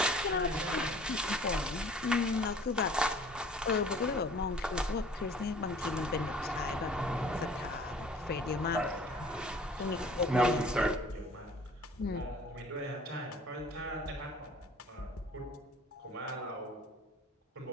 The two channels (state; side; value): normal; both; correlation 0.50